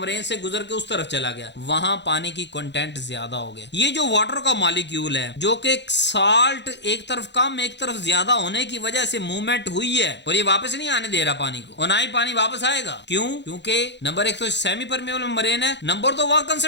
से गुजर के उस तरफ चला गया, वहां पानी की कंटेंट ज्यादा हो गया। ये जो वाटर का मॉलिक्यूल है जो कि साल्ट एक तरफ कम एक तरफ ज्यादा होने की वजह से मूवमेंट हुई है, और ये वापस नहीं आने दे रहा पानी को, और ना ही पानी वापस आएगा। क्यों? क्योंकि नंबर 1 तो सेमी परमिएबल मेम्ब्रेन है, नंबर 2 वहां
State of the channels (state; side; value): late; right; 0.51 ms